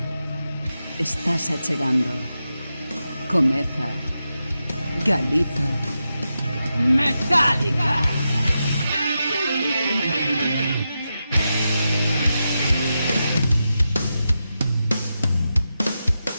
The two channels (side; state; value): both; inverted; correlation -0.89